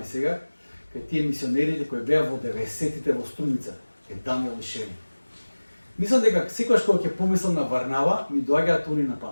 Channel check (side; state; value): both; inverted; correlation -1.00